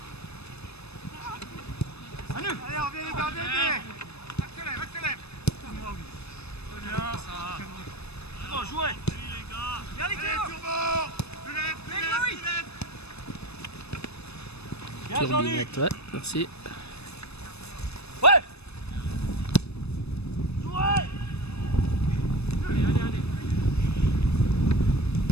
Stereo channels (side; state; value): right; late; 0.79 ms